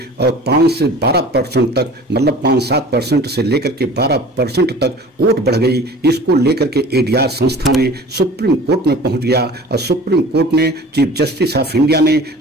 और 5 से 12% तक, मतलब 5-7% से लेकर के 12% तक वोट बढ़ गई। इसको लेकर के एडीआर संस्था ने सुप्रीम कोर्ट में पहुंच गया और सुप्रीम कोर्ट ने चीफ जस्टिस ऑफ इंडिया ने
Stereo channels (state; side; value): normal; both; correlation 0.43